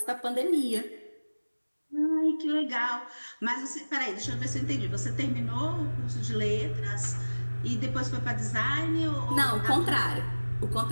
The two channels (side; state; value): both; inverted; correlation -1.00